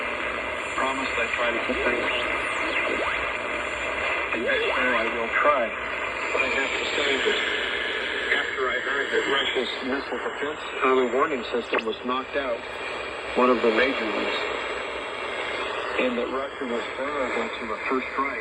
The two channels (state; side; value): identical; both; correlation 1.00